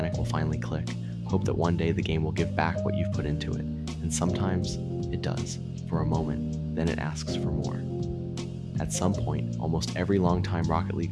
will finally click. Hope that one day the game will give back what you've put into it. And sometimes it does, for a moment, then it asks for more. At some point, almost every longtime Rocket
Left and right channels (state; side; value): identical; both; correlation 1.00